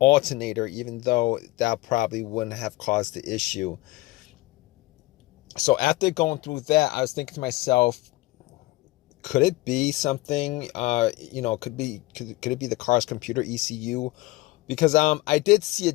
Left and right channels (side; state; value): right; quieter; 19.6 dB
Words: even though that probably wouldn't have caused the issue. So after going through that, I was thinking to myself, could it be something, could it be the car's computer ECU? Because I did see a